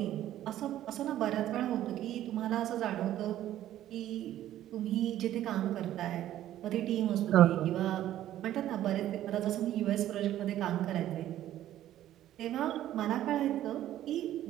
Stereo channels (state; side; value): quieter; left; 12.8 dB